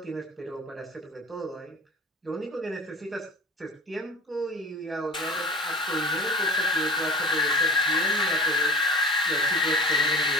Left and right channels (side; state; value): both; normal; correlation 0.38